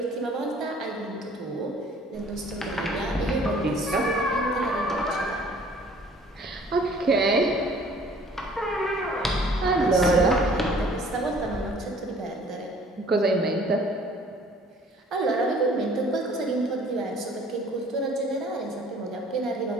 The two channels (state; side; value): normal; both; correlation 0.54